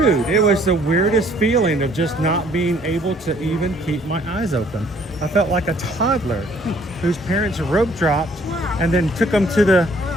it was the weirdest feeling of just not being able to even keep my eyes open. I felt like a toddler whose parents rope dropped and then took them to the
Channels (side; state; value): both; normal; correlation 0.60